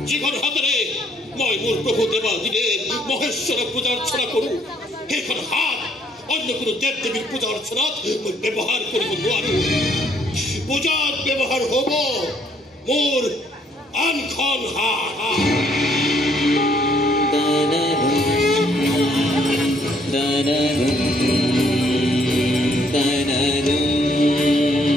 যিখন হাতেৰে মই মোৰ প্ৰভু দেৱাদিদেৱ মহেশ্বৰক পূজা অৰ্চনা কৰো সেইখন হাত অন্য কোনো দেৱ দেৱীৰ পূজা অৰ্চনাত মই ব্যৱহাৰ কৰিব নোৱাৰো পূজাত ব্যৱহাৰ হ'ব মোৰ আনখন হাত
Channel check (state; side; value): normal; both; correlation 0.67